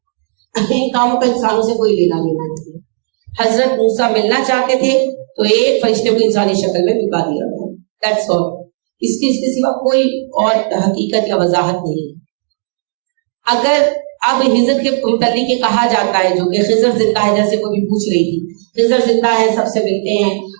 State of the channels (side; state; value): left; silent; digital silence